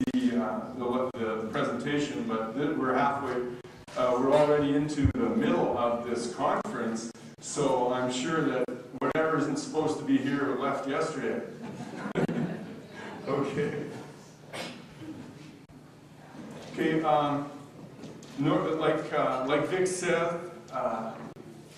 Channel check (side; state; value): both; identical; correlation 1.00